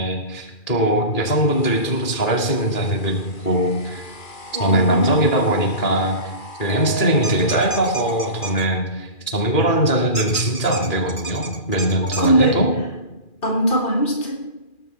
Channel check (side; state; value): right; late; 2.4 ms